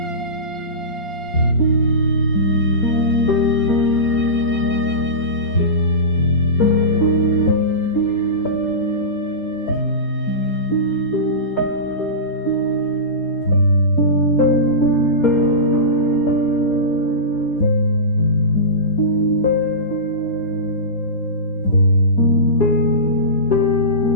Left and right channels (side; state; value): right; late; 4.3 ms